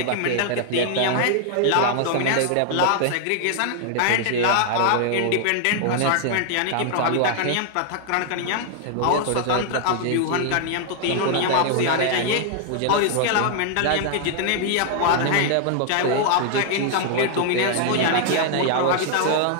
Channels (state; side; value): different; both; correlation 0.00